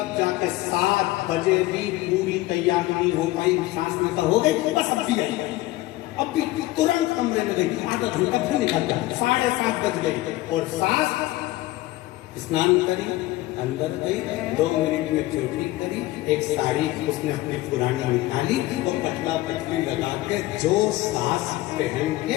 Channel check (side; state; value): right; quieter; 17.7 dB